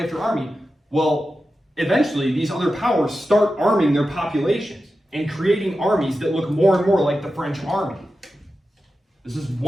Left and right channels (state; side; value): normal; both; correlation 0.92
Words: after army. Well, eventually these other powers start arming their populations and creating armies that look more and more like the French army. This is